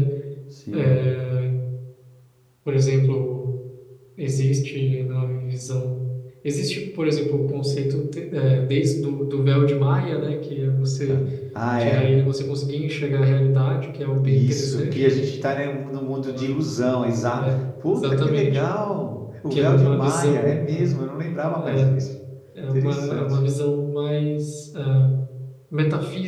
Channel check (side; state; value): both; identical; correlation 1.00